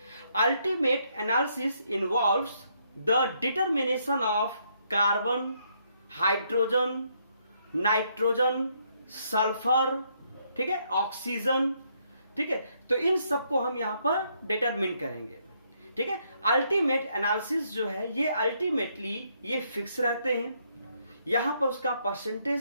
Ultimate analysis involves the determination of carbon, hydrogen, nitrogen, sulphur, ठीक है, ऑक्सीजन, ठीक है। तो इन सबको हम यहां पर डिटरमिन करेंगे, ठीक है। अल्टीमेट एनालिसिस जो है ये अल्टीमेटली ये फिक्स रहते हैं। यहां पर उसका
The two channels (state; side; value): inverted; both; correlation -0.73